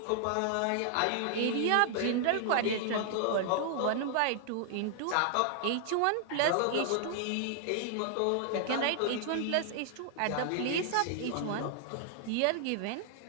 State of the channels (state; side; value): different; both; correlation 0.00